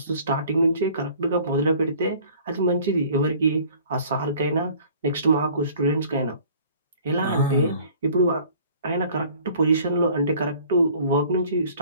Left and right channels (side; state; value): both; inverted; correlation -0.52